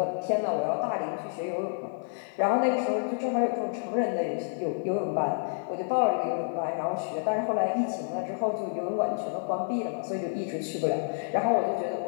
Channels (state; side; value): silent; right; digital silence